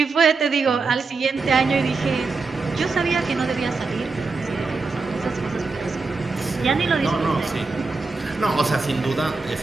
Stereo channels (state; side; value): quieter; left; 4.2 dB